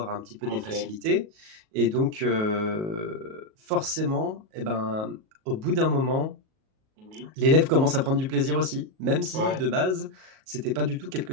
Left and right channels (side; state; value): left; late; 37 ms